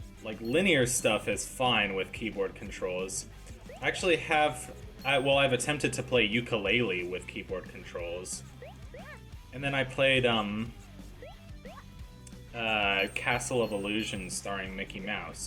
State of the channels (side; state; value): both; identical; correlation 1.00